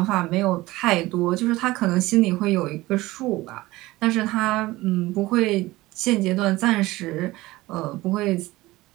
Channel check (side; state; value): left; quieter; 18.9 dB